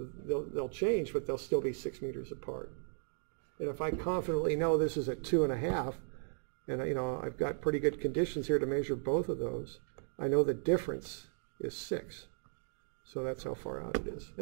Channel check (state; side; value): silent; left; digital silence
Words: they'll change, but they'll still be 6 meters apart. And if I confidently know this is at 2.5, and I've got pretty good conditions here to measure both of those, I know the difference is 6. So that's how far out it is.